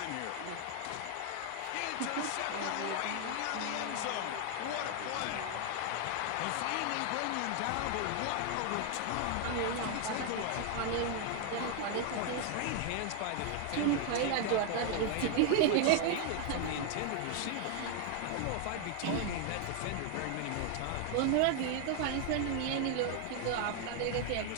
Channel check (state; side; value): different; both; correlation 0.00